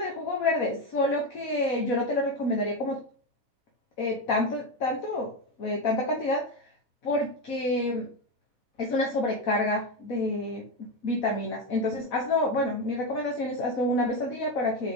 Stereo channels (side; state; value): both; normal; correlation 0.13